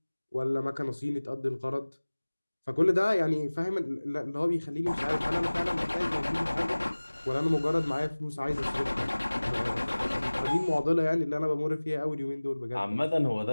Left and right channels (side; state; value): both; inverted; correlation -1.00